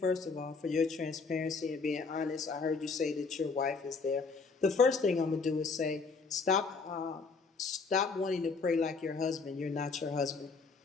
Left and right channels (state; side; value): quieter; right; 4.6 dB